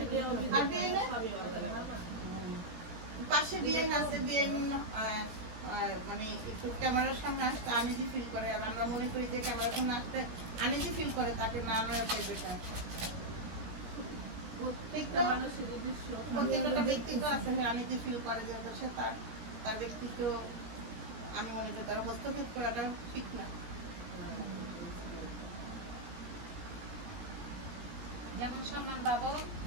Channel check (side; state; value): left; late; 17 ms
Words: আর বিয়ে না পাশে বিয়ে আছে বিয়ে মানে একটু ক্যামেরার সামনে আসতে আনিজি ফিল করে আর আমরা মনে করি যে ক্যামেরার সামনে আসতে আনিজি ফিল করে তাকে না নেওয়া চাই বেটা প্রত্যেকটা ব্যক্তিত্ব আছে আনিজি ফিল করে যে সে তার ব্যক্তিত্ব আমি মনে করি তার হস্তক্ষেপ করাটা ঠিক না যেমন সম্মান পাবো